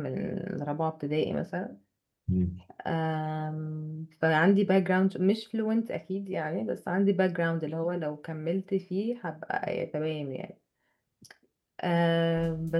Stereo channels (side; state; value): both; identical; correlation 1.00